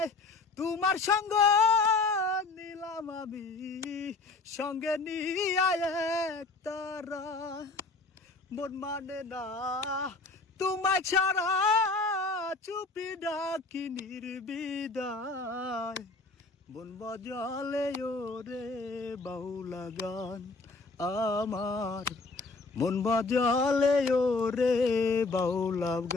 তোমার সঙ্গ নিলাম আমি সঙ্গে নিয়ে এক তারা। মন মানে না তোমায় ছাড়া, চুপি ডাকি নির্বিদায়। মন বাজালে ওরে বাউলা গান আমার, মন বাজালে ওরে বাউলা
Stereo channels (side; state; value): right; quieter; 3.6 dB